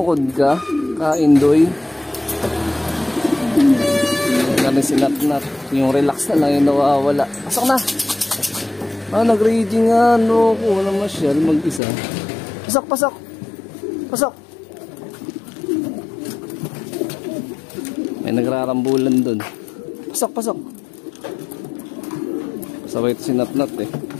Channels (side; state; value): right; drops out; at 11.8 s